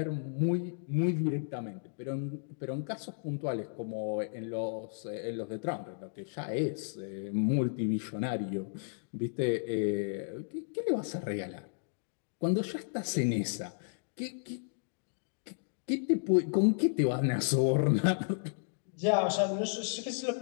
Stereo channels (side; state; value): right; silent; digital silence